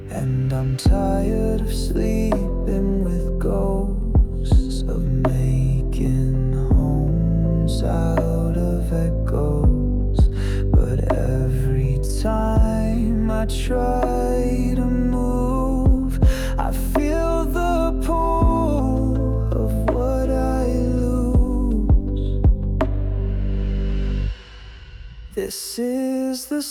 And I'm tired of sleeping with ghosts, of making homes out of echoes. But every time I try to move, I feel the pull of what I lose. This is the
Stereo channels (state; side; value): identical; both; correlation 1.00